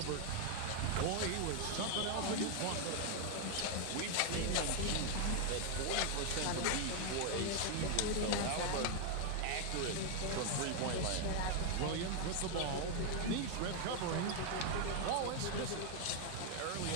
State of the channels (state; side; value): different; both; correlation 0.00